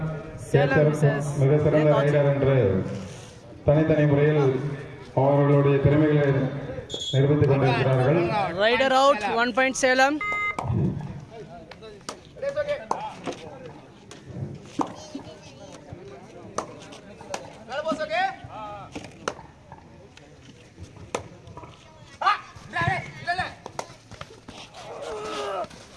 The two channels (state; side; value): identical; both; correlation 1.00